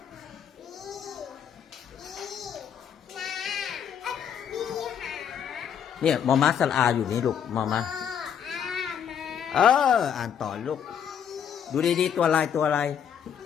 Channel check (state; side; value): quieter; right; 8.3 dB